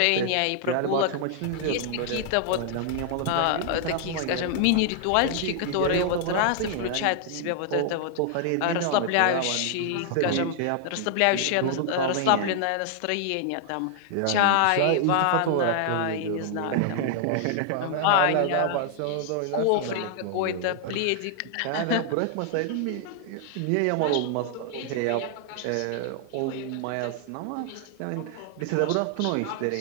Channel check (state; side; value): different; both; correlation 0.00